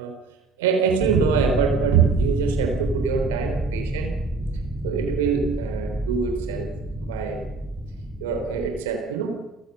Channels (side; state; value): left; quieter; 4.3 dB